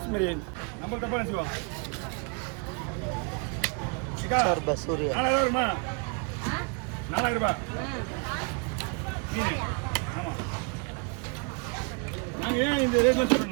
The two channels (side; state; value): left; quieter; 35.3 dB